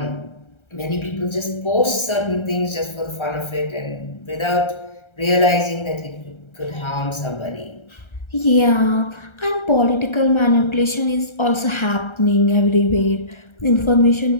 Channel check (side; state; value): right; late; 1.3 ms